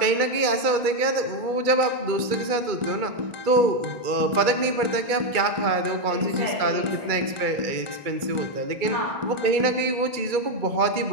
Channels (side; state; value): left; late; 2.2 ms